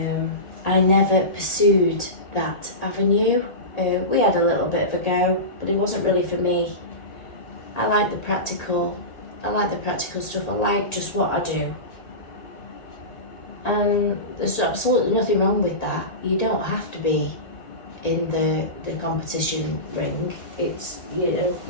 I never pursued that avenue. We had a little bit of a go, but it wasn't really for me. I like the practical stuff. I like just what I do. And there's absolutely nothing wrong with that. You don't have to be in the competition ring. It's, you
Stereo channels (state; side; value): late; right; 1.8 ms